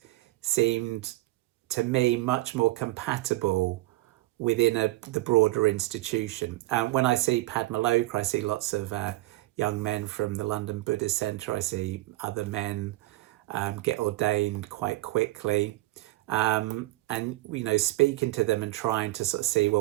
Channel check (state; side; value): quieter; left; 18.4 dB